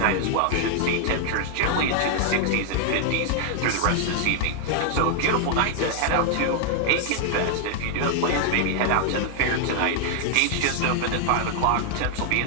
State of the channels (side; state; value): both; different; correlation 0.00